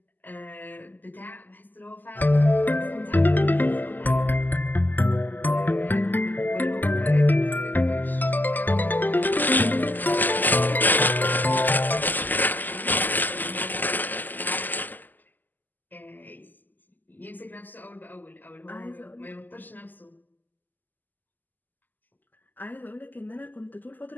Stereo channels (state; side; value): late; right; 0.086 ms